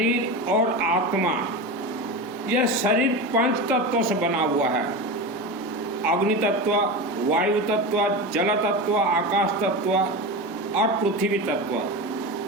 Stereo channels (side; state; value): both; normal; correlation 0.23